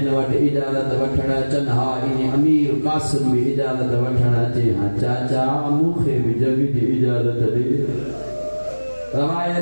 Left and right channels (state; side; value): inverted; both; correlation -1.00